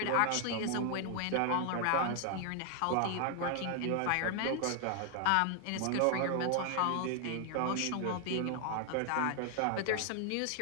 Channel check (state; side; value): different; both; correlation 0.00